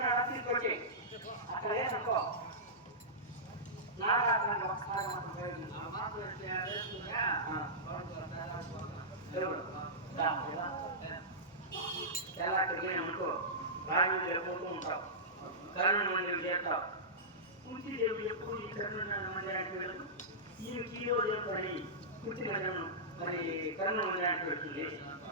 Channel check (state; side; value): normal; both; correlation -0.15